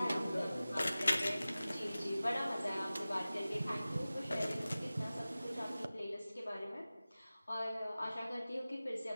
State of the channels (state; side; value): inverted; both; correlation -0.97